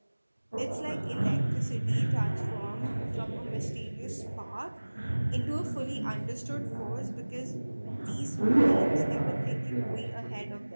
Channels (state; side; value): inverted; both; correlation -1.00